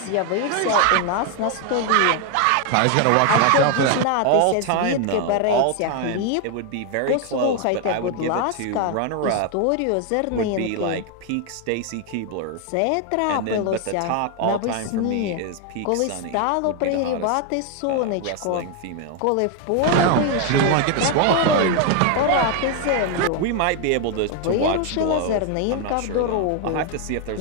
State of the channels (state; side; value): different; both; correlation 0.01